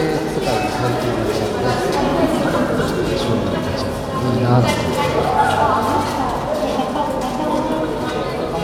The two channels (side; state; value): both; identical; correlation 1.00